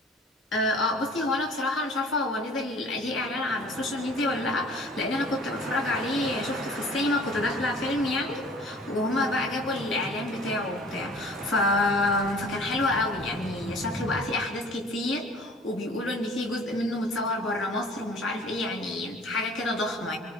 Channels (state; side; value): normal; both; correlation 0.49